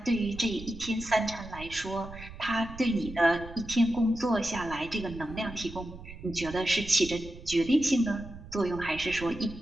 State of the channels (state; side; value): noise; right; rumble, 14 dB below the sound